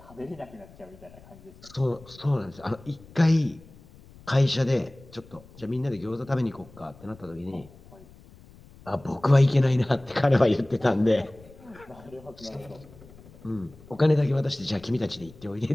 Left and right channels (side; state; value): left; noise; rumble, 22 dB below the sound